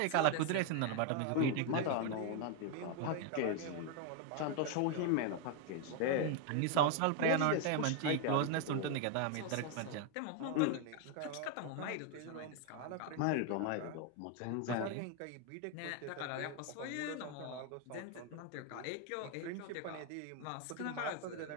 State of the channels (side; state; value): both; different; correlation 0.01